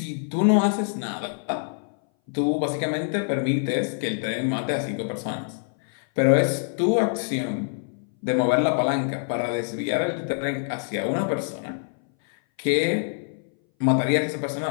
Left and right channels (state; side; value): silent; right; 60 dB below the other